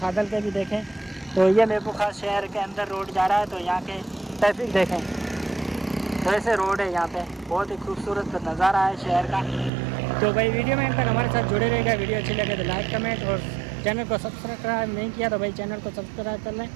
के भी देखें। तो ये मीरपुर खास शहर के अंदर रोड जा रहा है। तो यहाँ के ट्रैफिक देखें, तो ऐसे रोड है यहाँ पे। बहुत ही खूबसूरत नज़ारा है शहर का। तो भाई वीडियो में तक हमारे साथ जुड़े रहेगा। वीडियो अच्छी लगे तो लाइक कमेंट, और चैनल को सब्सक्राइब नहीं किया तो भाई चैनल को सब्सक्राइब कर लें।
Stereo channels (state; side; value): drops out; left; at 9.7 s